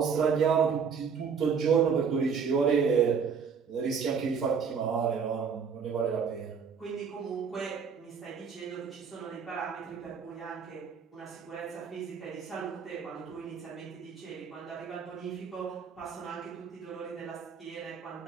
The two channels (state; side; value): quieter; left; 6.3 dB